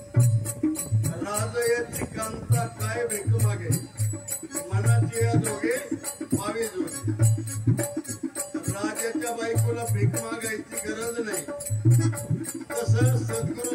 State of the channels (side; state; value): both; identical; correlation 1.00